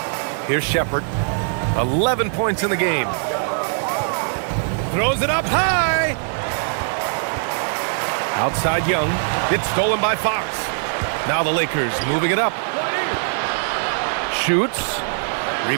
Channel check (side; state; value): left; silent; 59 dB below the other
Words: Here's Shepard. 11 points in the game. Throws it up high. Outside Young. It's stolen by Fox. Now the Lakers moving it up. shoots.